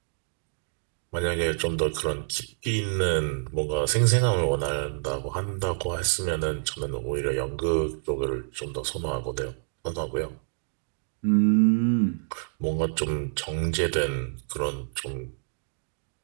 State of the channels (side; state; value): left; silent; digital silence